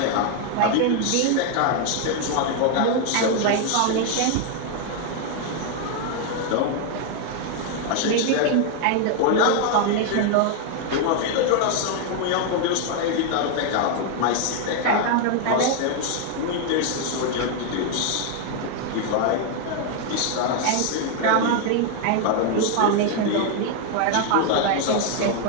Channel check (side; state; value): both; different; correlation 0.00